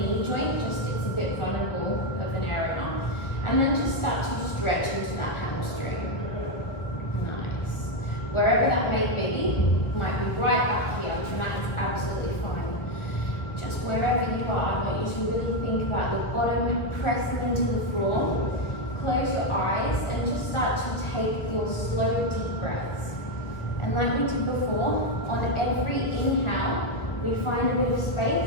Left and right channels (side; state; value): right; late; 1.3 ms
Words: joint, just it's a bit vulnerable of an area. And then just start to stretch into that hamstring. Nice. Wherever that may be, might be right up here, and that is absolutely fine. Just wherever you are, I want you to really think about your bottom pressing into the floor. Close your eyes and just start to take your slow, deep breaths. And like we did before, on every inhale, we find a bit of